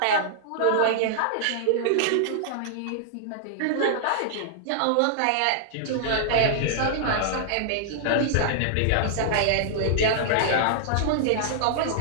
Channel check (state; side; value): different; both; correlation -0.01